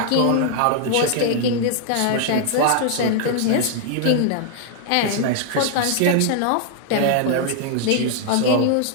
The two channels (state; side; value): different; both; correlation -0.01